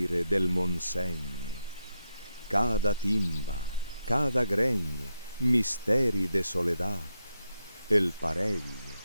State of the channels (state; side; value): inverted; both; correlation -0.84